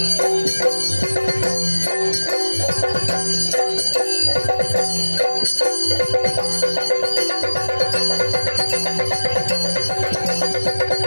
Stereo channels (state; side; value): inverted; both; correlation -1.00